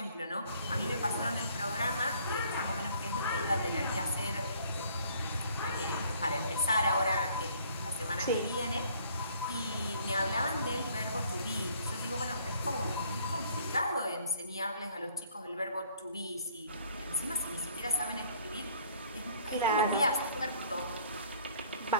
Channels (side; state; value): both; inverted; correlation -0.59